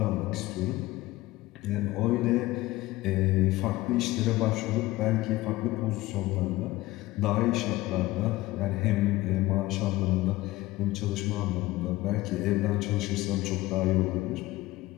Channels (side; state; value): right; quieter; 18.5 dB